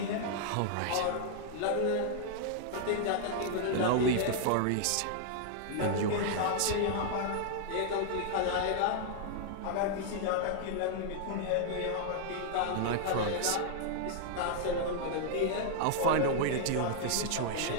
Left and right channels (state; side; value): different; both; correlation -0.01